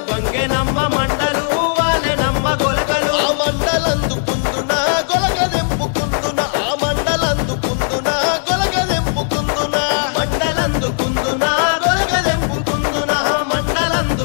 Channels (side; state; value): right; silent; digital silence